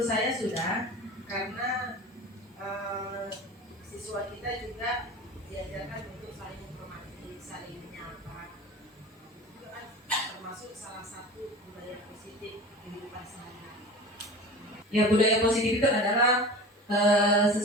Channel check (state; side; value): normal; both; correlation 0.35